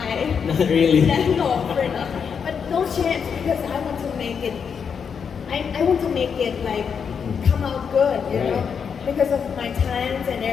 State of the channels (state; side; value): quieter; right; 6.7 dB